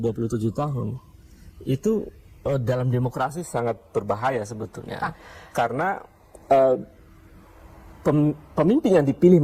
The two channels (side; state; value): both; identical; correlation 1.00